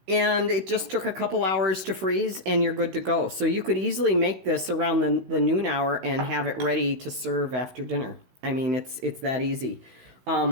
And it just took a couple hours to freeze, and you're good to go. So you could easily make this around the noon hour and have it ready to serve after dinner. I mean, it's that easy.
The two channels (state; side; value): late; left; 16 ms